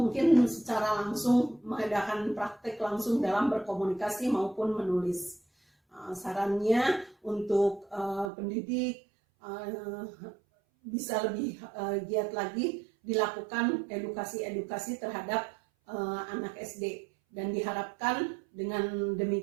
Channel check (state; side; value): drops out; left; at 8.3 s